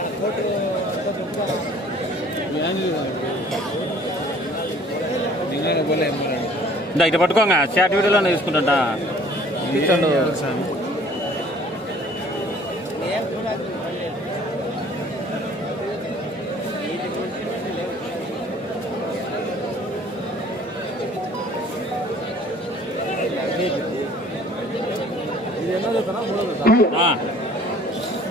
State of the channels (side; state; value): both; normal; correlation 0.53